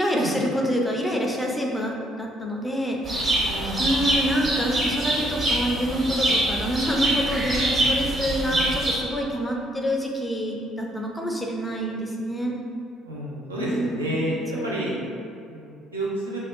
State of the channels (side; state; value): both; normal; correlation 0.69